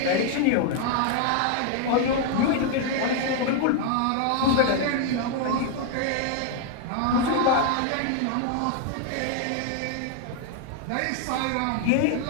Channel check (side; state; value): both; different; correlation 0.00